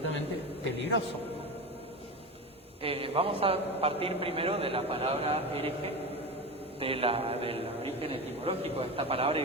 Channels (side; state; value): both; normal; correlation 0.24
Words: peligroso. Vamos a partir primero de la palabra hereje, del origen etimológico de esta palabra y